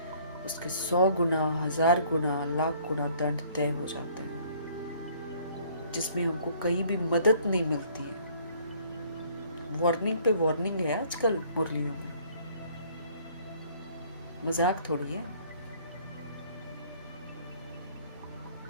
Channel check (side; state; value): both; inverted; correlation -0.59